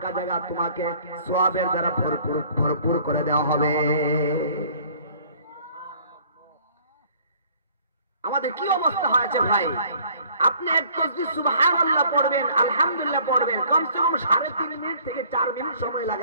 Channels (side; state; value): both; inverted; correlation -0.56